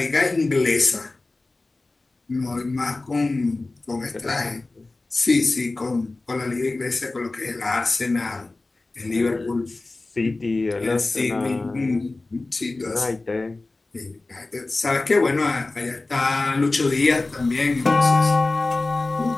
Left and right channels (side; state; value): right; quieter; 3.2 dB